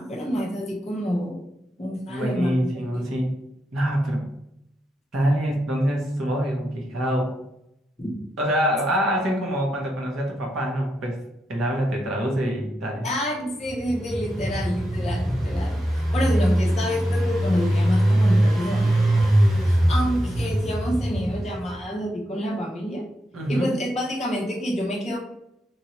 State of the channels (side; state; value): both; normal; correlation 0.85